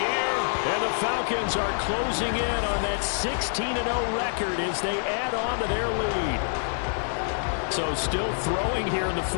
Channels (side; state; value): right; silent; digital silence